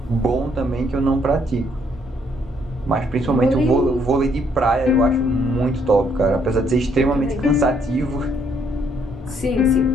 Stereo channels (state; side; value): normal; both; correlation 0.69